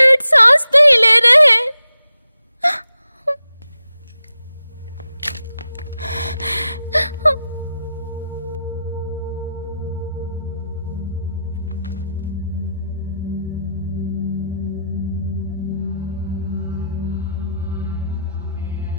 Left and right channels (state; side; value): inverted; both; correlation -0.86